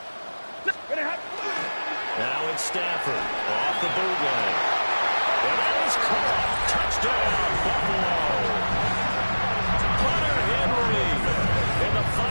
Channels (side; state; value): both; inverted; correlation -1.00